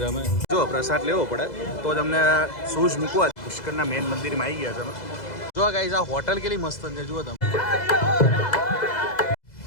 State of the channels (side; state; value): right; late; 2.0 ms